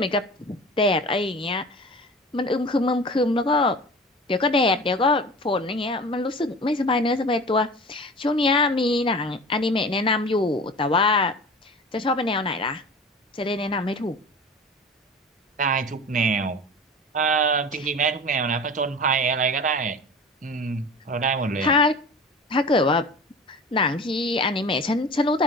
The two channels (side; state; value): both; normal; correlation 0.37